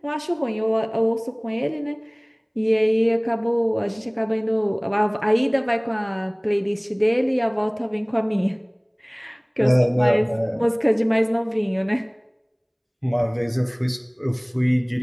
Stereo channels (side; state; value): both; identical; correlation 1.00